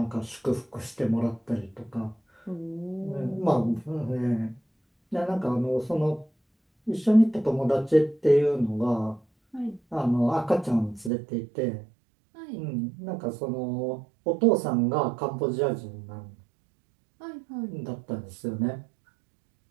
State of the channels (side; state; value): left; drops out; at 11.1 s